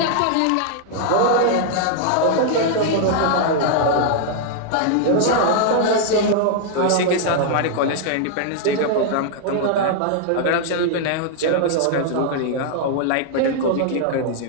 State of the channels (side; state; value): both; different; correlation 0.00